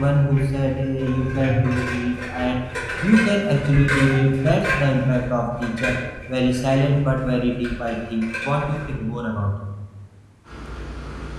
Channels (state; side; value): identical; both; correlation 1.00